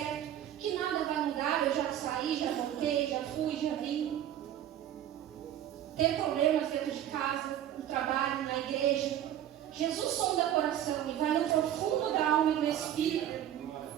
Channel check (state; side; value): quieter; left; 11.3 dB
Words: que nada vai mudar, eu já saí, já voltei, já fui, já vim. Ter problemas dentro de casa, no trabalho, na igreja. Jesus sonda o coração e vai no profundo da alma e do espírito